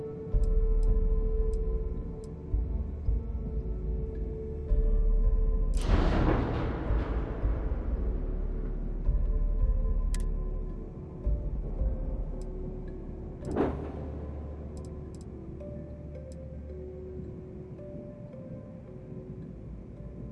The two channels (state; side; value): identical; both; correlation 1.00